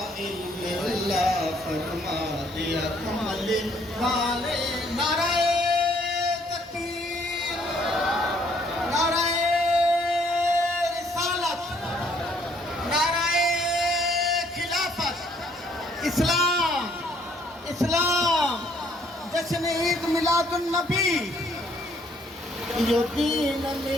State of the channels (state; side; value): normal; both; correlation 0.65